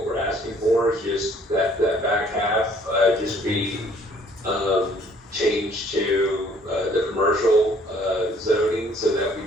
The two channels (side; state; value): both; normal; correlation 0.59